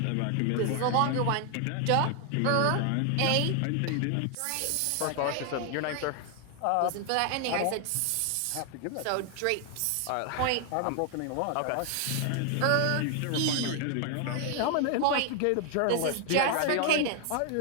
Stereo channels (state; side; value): different; both; correlation 0.00